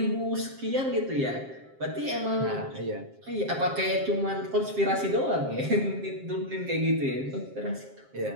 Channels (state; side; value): late; left; 7.5 ms